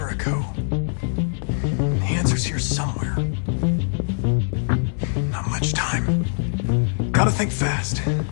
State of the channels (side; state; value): right; silent; 64 dB below the other